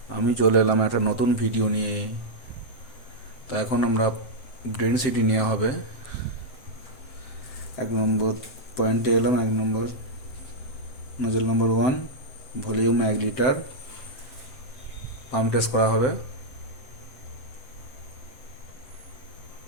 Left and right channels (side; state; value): right; late; 7.7 ms